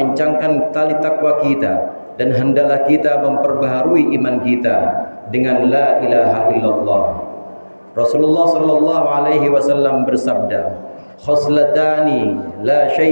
tali takwa kita dan hendaklah kita memperbaharui iman kita dengan la ilaha illallah. Rasulullah sallallahu alaihi wasallam bersabda, khoslatani la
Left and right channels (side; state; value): both; inverted; correlation -1.00